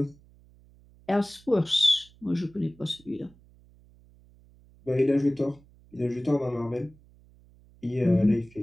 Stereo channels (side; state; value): right; noise; hum, 27 dB below the sound